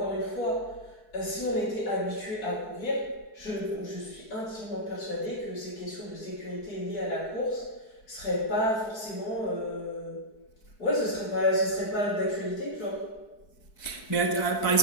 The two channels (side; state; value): right; late; 4.6 ms